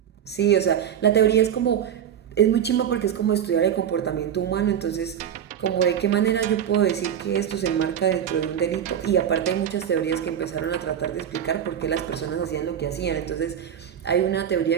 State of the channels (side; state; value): left; quieter; 9.2 dB